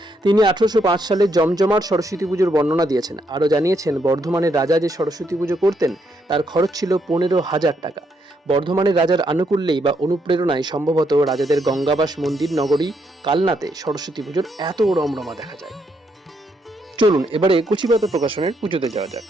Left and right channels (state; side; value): normal; both; correlation 0.76